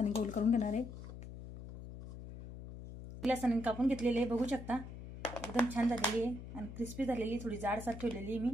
गोल करून घेणार आहे. गिलासाने कापून घेतलेले आहे, बघू शकता. एकदम छान झालेली आहे आणि क्रिस्पी झालेली. थोडी जाडसर ठेवलेली आहे मी,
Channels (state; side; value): noise; left; hum, 12 dB below the sound